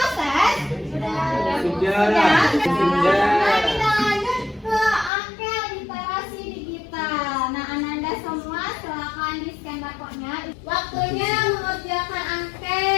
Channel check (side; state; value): right; drops out; at 5.1 s